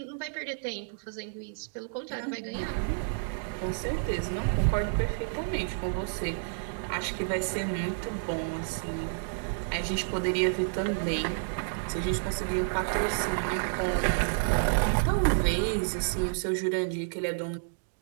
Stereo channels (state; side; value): silent; left; digital silence